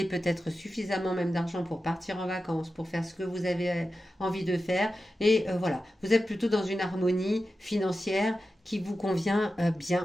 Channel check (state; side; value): normal; both; correlation 0.92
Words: peut-être suffisamment même d'argent pour partir en vacances, pour faire ce que vous avez envie de faire. Et voilà, vous êtes plutôt dans une harmonie financière qui vous convient